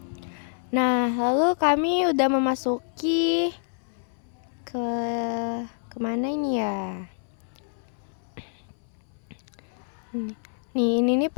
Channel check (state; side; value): silent; right; 58 dB below the other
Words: Nah, lalu kami udah memasuki ke kemana ini ya? Nih, ini